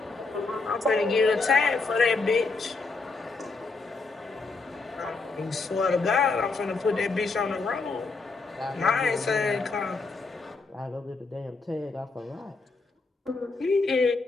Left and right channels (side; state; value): right; quieter; 3.9 dB